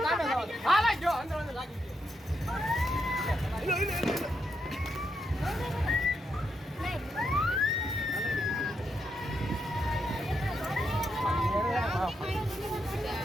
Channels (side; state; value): both; normal; correlation 0.81